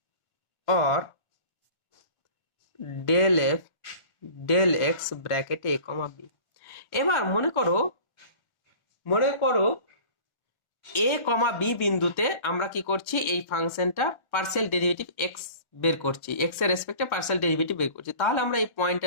or del f del x bracket a comma b। এবার মনে করো a কমা b বিন্দুতে আমরা কি করছি, এই ফাংশনটা পার্সিয়াল ডেরিভেটিভ x বের করছি, x এর রেসপেক্টে পার্সিয়াল ডেরিভেটিভ বের করছি। তাহলে আমরা এই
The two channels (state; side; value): late; right; 1.3 ms